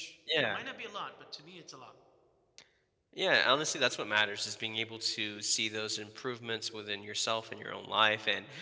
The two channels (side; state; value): both; identical; correlation 1.00